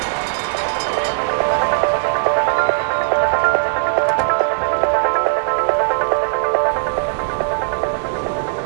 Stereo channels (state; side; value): silent; left; digital silence